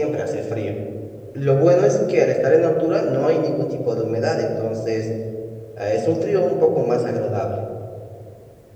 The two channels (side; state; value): both; identical; correlation 1.00